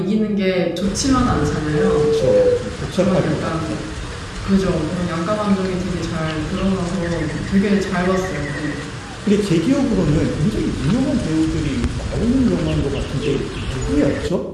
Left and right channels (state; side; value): identical; both; correlation 1.00